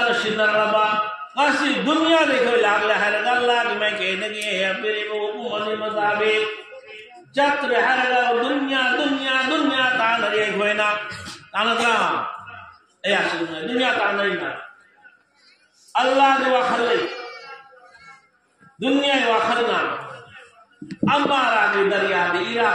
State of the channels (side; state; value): both; identical; correlation 1.00